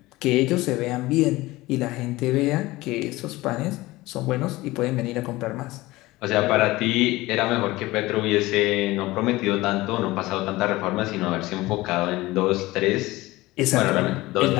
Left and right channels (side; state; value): right; quieter; 19.3 dB